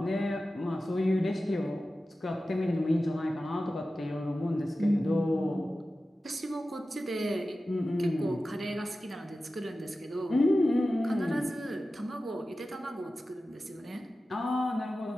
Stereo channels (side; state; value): both; normal; correlation 0.94